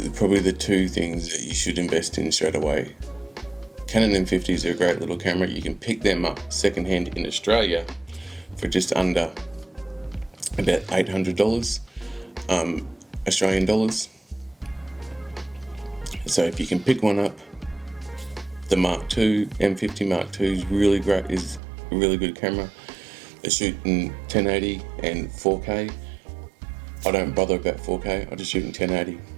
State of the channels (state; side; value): drops out; left; at 21.6 s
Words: probably the two things that you should invest in straight away. Canon M50s are a great little camera. You can pick them up secondhand in Australia for just under about $800 Australian dollars. So if you can pick one up, the Mark II, M50 Mark II is really great, is a really good camera. They shoot in 1080 and 4K. I don't bother about 4K, I just shoot in 1080.